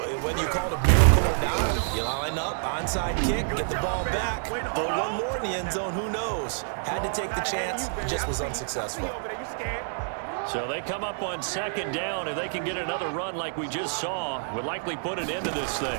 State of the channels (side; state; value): left; silent; digital silence